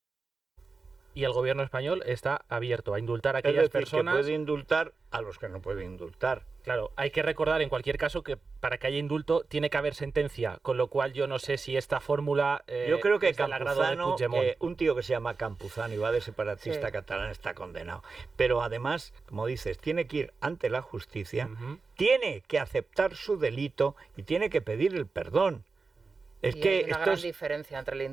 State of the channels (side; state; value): left; quieter; 4.3 dB